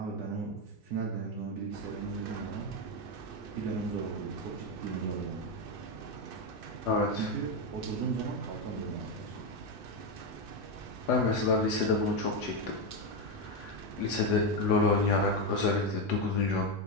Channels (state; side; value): normal; both; correlation 0.09